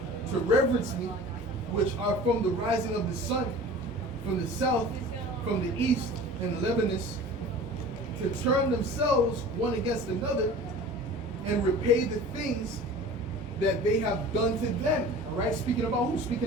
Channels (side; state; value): both; normal; correlation 0.40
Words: to reverence me, which are from the rising of the sun, from the south, from the east, and Lebanus, to turn themselves one against another and repay the things that they have done to them. All right? Speaking about who?